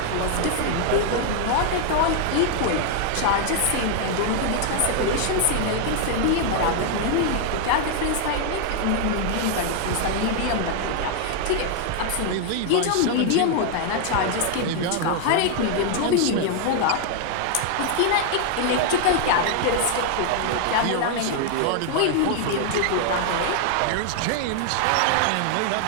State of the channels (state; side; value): different; both; correlation 0.00